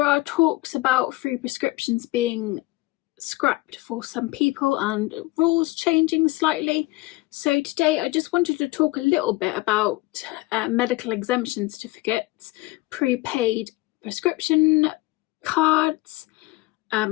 are talks about free prescriptions being scrapped for some people and rules changing slightly. So today I just wanted to talk a little bit about medical exemption certificates, prepaid prescription cards,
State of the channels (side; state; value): right; quieter; 20.8 dB